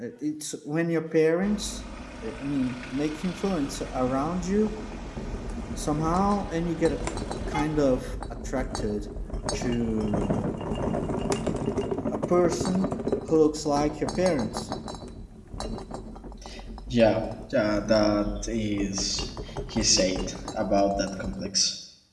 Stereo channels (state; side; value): identical; both; correlation 1.00